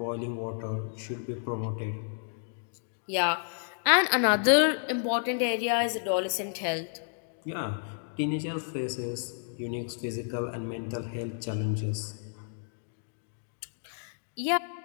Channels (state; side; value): silent; right; digital silence